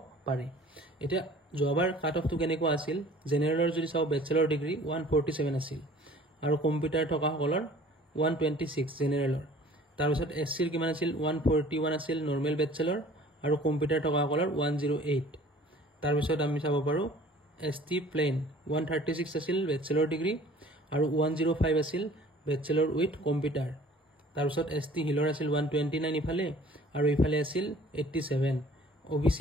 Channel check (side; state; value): both; normal; correlation 0.50